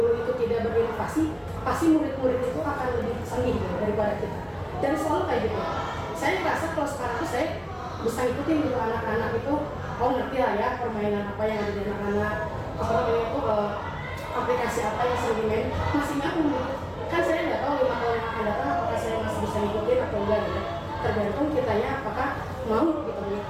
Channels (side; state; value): both; identical; correlation 1.00